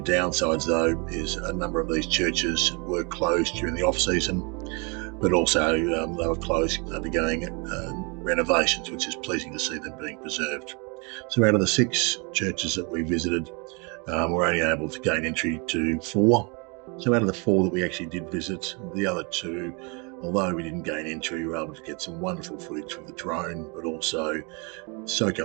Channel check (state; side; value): quieter; left; 32.2 dB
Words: downsides, though, is a number of these churches were closed during the off-season, but also they were closed undergoing renovations, which is pleasing to see them being preserved. So out of the 6 churches that we visited, we're only able to gain entry to 4. So out of the 4 that we actually did visit, the other 2, although we didn't gain entry, we were able to get some wonderful footage with the drone, but also soak